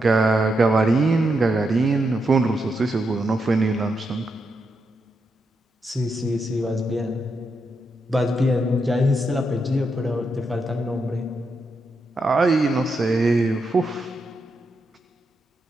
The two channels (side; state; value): both; normal; correlation 0.83